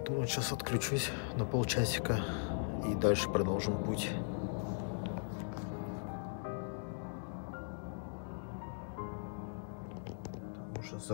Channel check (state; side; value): silent; right; digital silence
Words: сейчас отключусь на полчасика и дальше продолжим путь. Там уже